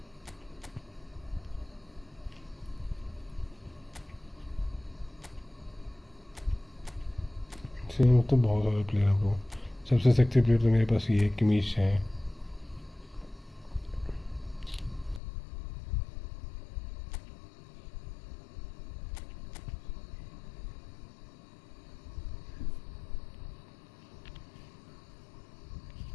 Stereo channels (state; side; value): drops out; right; at 15.2 s